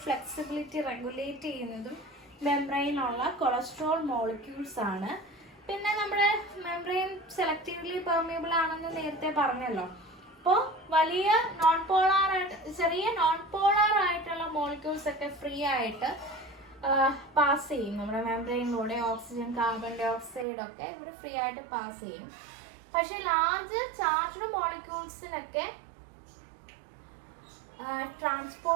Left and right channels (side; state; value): left; drops out; at 20.5 s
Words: ഫ്ലെക്സിബിലിറ്റി റെഗുലേറ്റ് ചെയ്യുന്നതും മെംബ്രെയിനുള്ള കൊളസ്ട്രോൾ മോളിക്യൂൾസ് ആണ്. പിന്നെ നമ്മുടെ മെംബ്രെയിൻ സെലക്റ്റീവ്ലി പെർമിയബിൾ ആണെന്ന് നേരത്തെ പറഞ്ഞല്ലോ. അപ്പോൾ വലിയ ചെറിയ നോൺ പോളാർ ആയിട്ടുള്ള മോളിക്യൂൾസ് ഒക്കെ ഫ്രീ ആയിട്ട് പാസ് ചെയ്യും. നമ്മുടെ മെംബ്രെയിനിലൂടെ ഓക്സിജൻ, കാർബൺ ഡൈ ഓക്സൈഡ് ഒക്കെ ഇവർ ഫ്രീ ആയിട്ട് പാസ് ചെയ്യും. പക്ഷെ ലാർജ് ചാർജ്ഡ് മോളിക്യൂൾസിനൊക്കെ